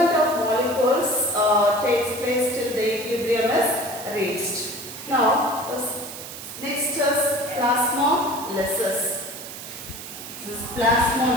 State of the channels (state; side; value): noise; right; hiss, 11 dB below the sound